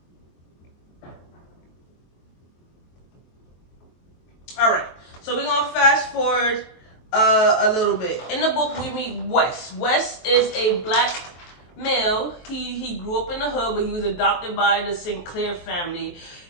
All right, so we're going to fast forward a little bit. In the book, we meet Wes. Wes is a black male. He grew up in the hood, but he was adopted by the Sinclair family,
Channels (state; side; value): late; right; 23 ms